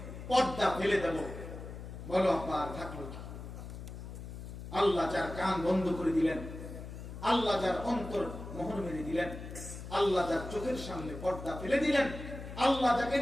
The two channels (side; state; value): left; noise; hum, 10 dB below the sound